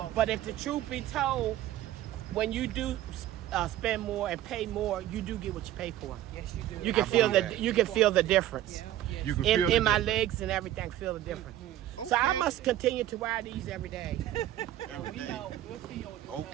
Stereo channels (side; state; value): left; quieter; 13.3 dB